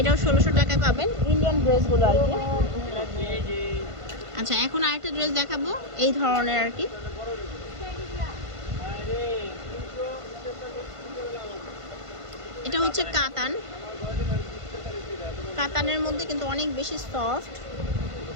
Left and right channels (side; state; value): left; late; 1.5 ms